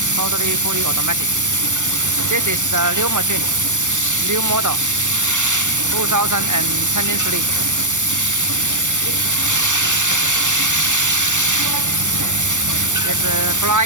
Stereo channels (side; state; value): left; late; 0.85 ms